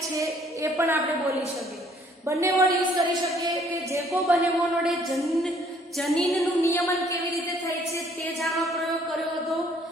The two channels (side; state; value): both; normal; correlation 0.62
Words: છે એ પણ આપણે બોલી શકીએ. બંને વર્ડ યુઝ કરી શકીએ કે જેકોબ અને મોનોડે જનીનનું નિયમન કેવી રીતે થાય છે તે જાણવા પ્રયોગ કર્યો હતો,